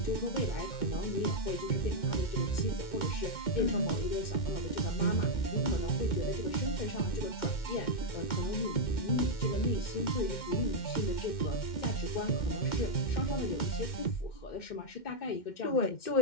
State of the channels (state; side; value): late; right; 2.1 ms